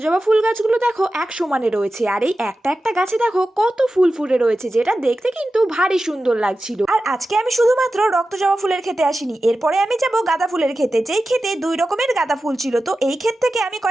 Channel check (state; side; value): normal; both; correlation 0.93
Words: ফুল গাছগুলো দেখো এক সমানে রয়েছে, আর এই একটা একটা গাছে দেখো কত ফুল ফুটে রয়েছে, যেটা দেখতে কিন্তু ভারী সুন্দর লাগছিল। আর আজকে আমি শুধুমাত্র রক্তজবা ফুলের ক্ষেতে আসিনি, এরপরে আমি যাব গাঁদা ফুলের ক্ষেতে, যেই ক্ষেতে দুই রকমের গাঁদা ফুল ছিল। তো এই ক্ষেত থেকে আমি